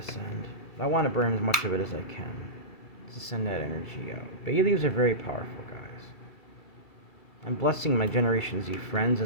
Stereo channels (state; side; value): late; right; 2.7 ms